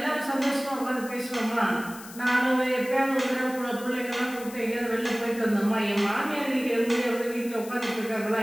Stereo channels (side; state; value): left; noise; hiss, 16 dB below the sound